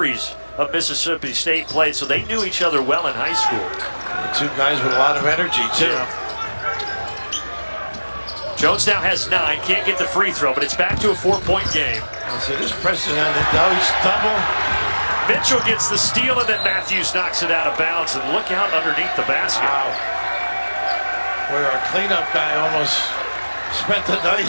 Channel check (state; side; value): inverted; both; correlation -1.00